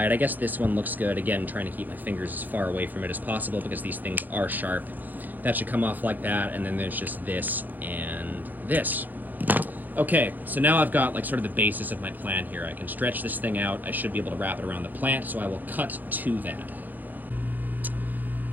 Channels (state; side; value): late; left; 0.085 ms